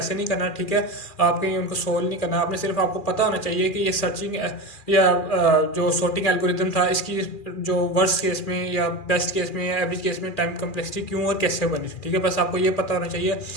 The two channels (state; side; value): late; right; 2.4 ms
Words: नहीं करना। ठीक है, आपके उनको सोल्व नहीं करना, आपने सिर्फ आपको पता होना चाहिए कि ये सर्चिंग या जो सॉर्टिंग एल्गोरिदम था, इसकी जो वर्स्ट केस में या बेस्ट केस में या एवरेज केस में टाइम कॉम्प्लेक्सिटी क्यों और कैसे बनी। ठीक है, बस आपको ये पता होना चाहिए।